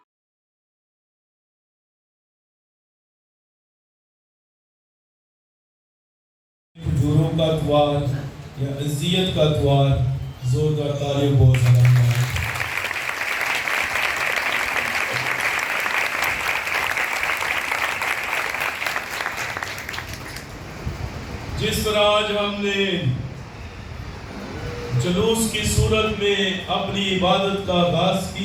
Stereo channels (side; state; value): both; identical; correlation 1.00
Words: کا اتوار یا اذیت کا اتوار، زوردار تالیوں بہت سلام ہے۔ جس طرح آج ہم نے جلوس کی صورت میں اپنی عبادت کا آغاز